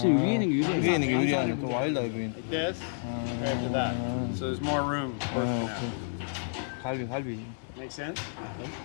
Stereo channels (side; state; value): right; silent; digital silence